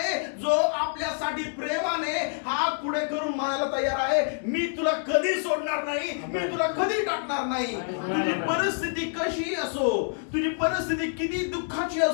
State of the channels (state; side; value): silent; right; 60 dB below the other